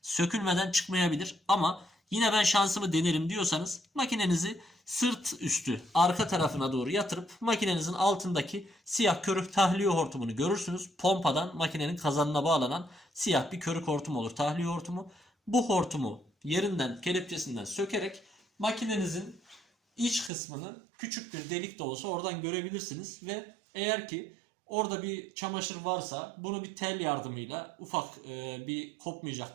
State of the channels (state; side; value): drops out; left; at 20.3 s